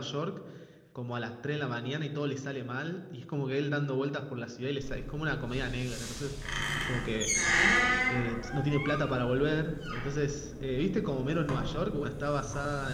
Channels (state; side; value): identical; both; correlation 1.00